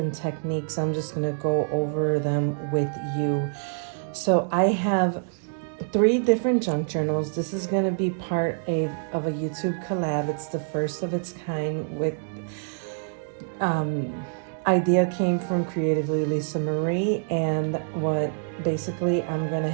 techniques. I'm just going to go over them with you. So I have 3 different junk journals. This is going to be part of a YouTube collab. It's the first of its kind with idea came from Creatively Lisa Marie, and what basically I'm going to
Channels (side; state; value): left; silent; digital silence